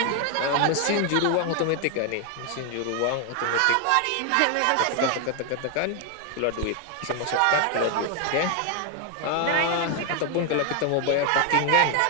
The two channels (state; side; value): different; both; correlation 0.01